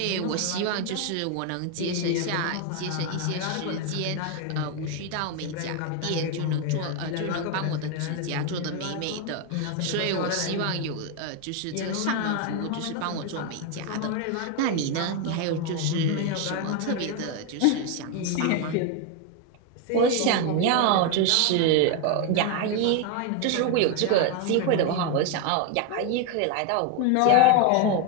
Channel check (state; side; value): different; both; correlation 0.02